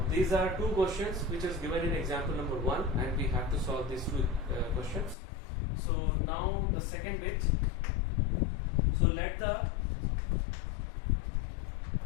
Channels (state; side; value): drops out; right; at 5.2 s